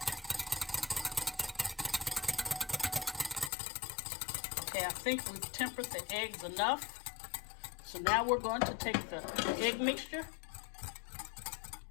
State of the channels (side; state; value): right; drops out; at 3.5 s